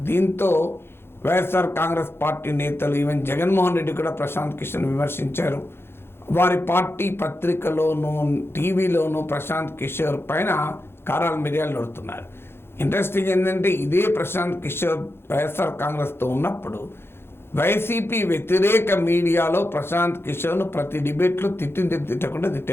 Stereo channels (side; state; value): right; late; 0.11 ms